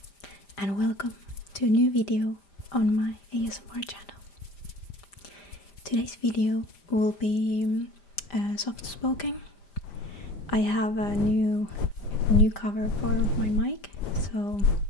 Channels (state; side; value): late; right; 5.0 ms